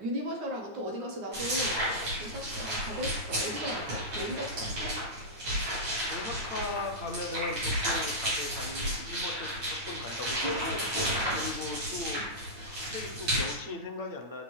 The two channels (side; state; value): left; late; 9.3 ms